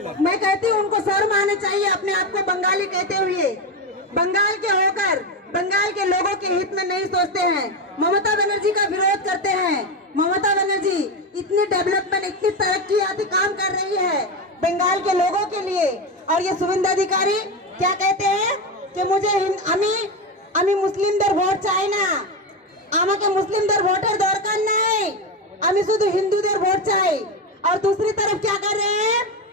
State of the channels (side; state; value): both; normal; correlation 0.15